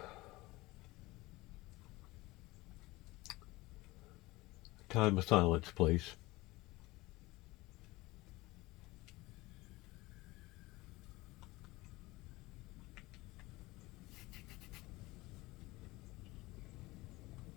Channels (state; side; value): quieter; right; 20.6 dB